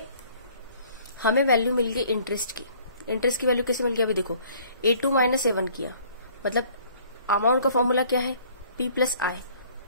हमें वैल्यू मिल गई इंटरेस्ट की। इंटरेस्ट की वैल्यू कैसे मिल गई, अभी देखो A2 माइनस A1 किया, मतलब अमाउंट का फॉर्मूला क्या है, P प्लस आई।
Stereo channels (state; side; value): inverted; both; correlation -0.56